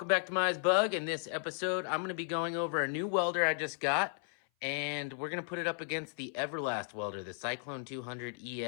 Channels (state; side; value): silent; right; 55 dB below the other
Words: back to MiahsBug. In this episode, I'm going to be going over a new welder I just got, and we're going to put it up against the Everlast welder, the Cyclone 200